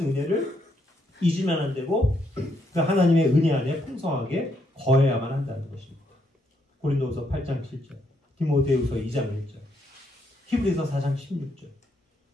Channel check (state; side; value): normal; both; correlation 0.76